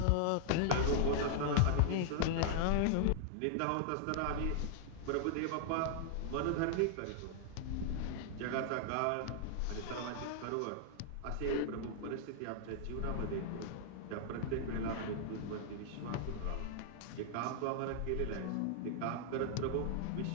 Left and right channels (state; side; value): different; both; correlation -0.01